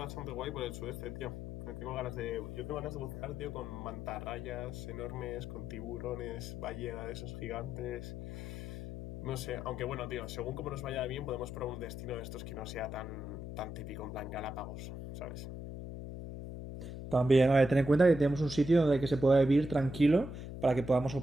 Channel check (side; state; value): left; noise; hum, 8 dB below the sound